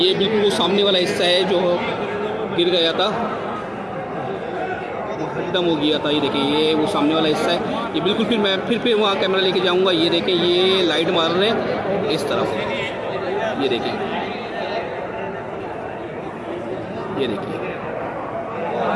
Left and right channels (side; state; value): both; identical; correlation 1.00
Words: बिल्कुल वो सामने वाला हिस्सा है जो गिर गया था, खत्म हो गया था। ये देखें, ये वो सामने वाला हिस्सा है। ये बिल्कुल मैं फिर वहाँ कैमरा लेके जाऊँगा। ये देखें, ये लाइट मार रहे हैं इस तरफ। ये देखिए,